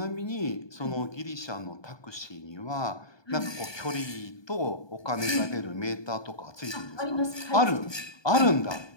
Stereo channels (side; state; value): right; late; 1.2 ms